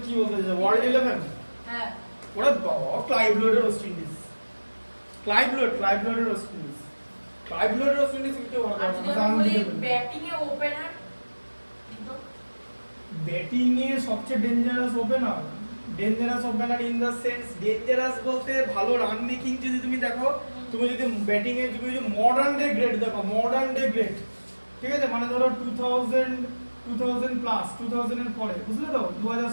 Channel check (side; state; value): both; inverted; correlation -1.00